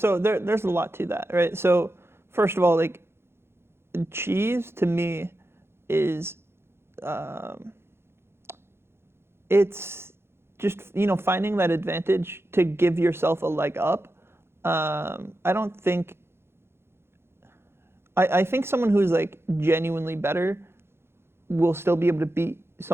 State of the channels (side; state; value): left; late; 0.12 ms